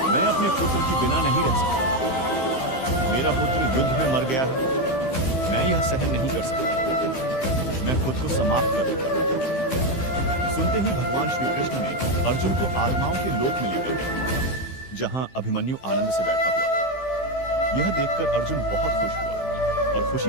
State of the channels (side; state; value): right; late; 15 ms